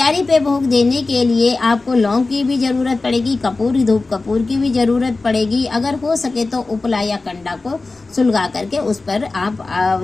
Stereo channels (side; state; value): right; quieter; 3.5 dB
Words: पे भोग देने के लिए आपको लौंग की भी जरूरत पड़ेगी, कपूर, धूप कपूर की भी जरूरत पड़ेगी। अगर हो सके तो उपला या कंडा को सुलगा करके उस पर